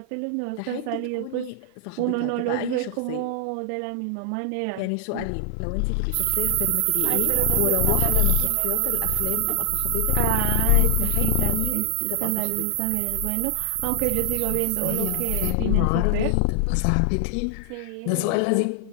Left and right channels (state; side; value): different; both; correlation 0.00